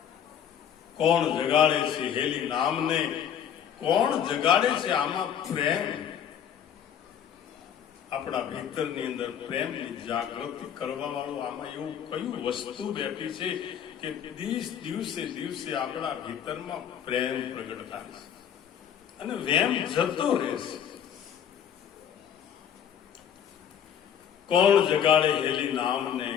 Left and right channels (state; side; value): quieter; right; 8.9 dB